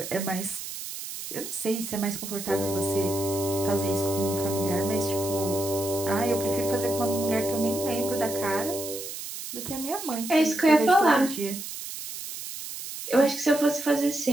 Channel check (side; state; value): right; noise; hiss, 8 dB below the sound